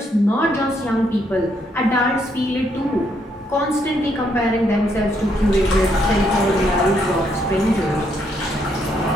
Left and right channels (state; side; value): normal; both; correlation 0.74